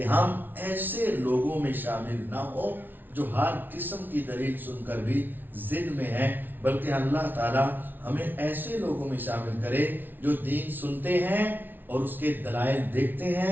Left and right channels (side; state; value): left; late; 0.090 ms